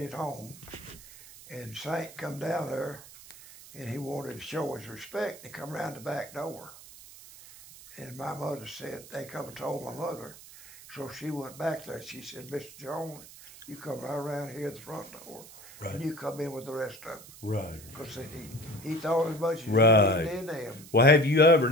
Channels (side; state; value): right; noise; hiss, 18 dB below the sound